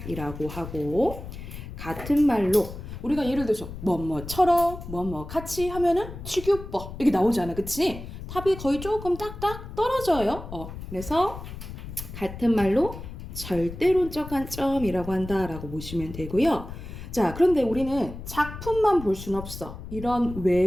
하고, 같은 말로 우리가 예를 들어서 뭐뭐처럼 뭐뭐 같이 하면은 취규법 이렇게 나오잖아, 그치? 탑이 거의 조금 딱딱 떨어져요. 그래서 같은 말로 절대론적 관점이라고 한다라고 보시면 되고요. 자, 그런데 우리는 작품만 볼 수는 없어. 이런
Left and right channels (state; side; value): noise; left; rumble, 11 dB below the sound